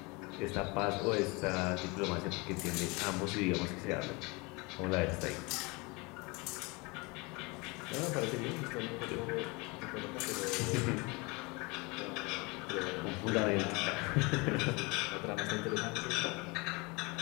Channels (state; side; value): quieter; right; 26.8 dB